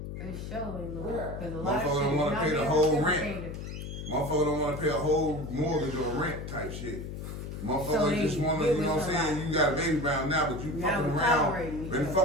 That show ain't love. Yeah. Because a lot of Motherfucker shit don't wanna not pay the being whole rent. reciprocated. Motherfucker don't wanna pay a whole mortgage or rent type shit. Motherfuckers just want to, you know what I'm saying? You got a baby bound now, but you fucking around. Been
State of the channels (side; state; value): left; noise; hum, 8 dB below the sound